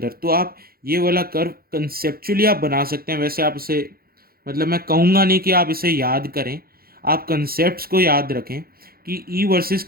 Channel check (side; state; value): left; late; 0.44 ms